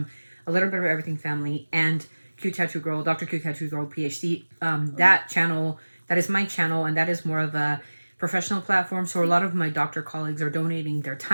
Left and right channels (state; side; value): inverted; both; correlation -1.00